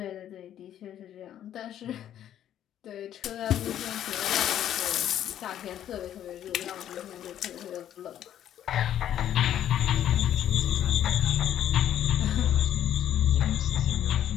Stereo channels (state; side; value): quieter; right; 10.9 dB